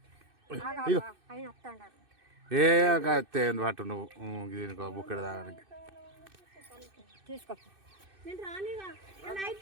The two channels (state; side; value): late; left; 2.6 ms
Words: ఇగో ఆయన వస్తాడారు ఏ పట్టు నువ్వు దీనికి బుక్కడ తాగడానికి తీసుకో నేను రానిగా